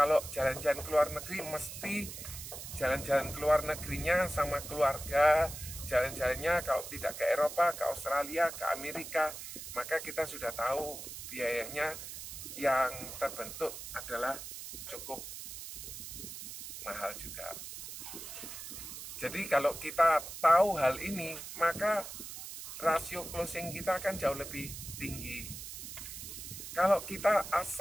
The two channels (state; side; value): noise; right; hiss, 10 dB below the sound